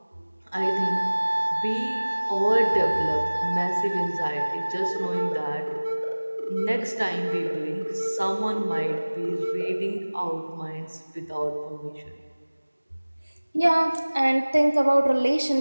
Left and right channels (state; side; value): inverted; both; correlation -1.00